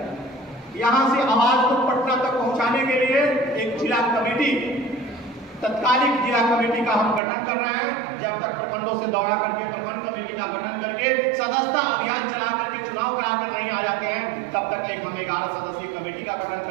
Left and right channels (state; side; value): drops out; left; at 7.2 s